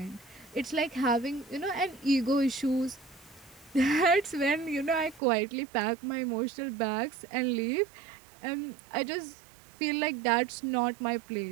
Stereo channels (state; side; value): drops out; left; at 5.2 s